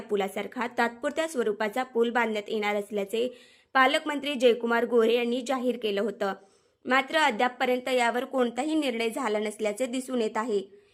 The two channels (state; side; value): identical; both; correlation 1.00